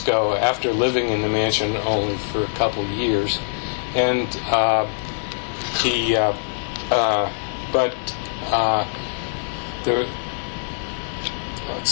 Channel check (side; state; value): right; silent; 64 dB below the other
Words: after living in the mansion only for a couple years, and